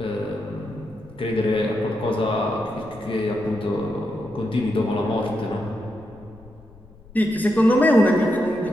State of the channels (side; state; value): left; noise; rumble, 23 dB below the sound